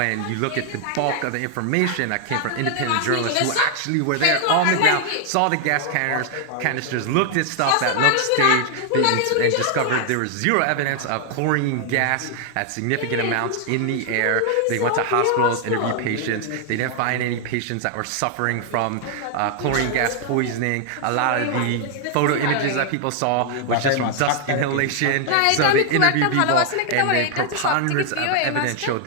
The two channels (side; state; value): both; different; correlation 0.00